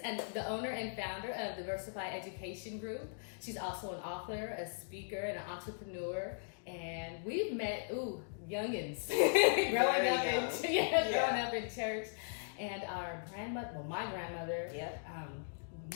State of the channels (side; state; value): right; silent; digital silence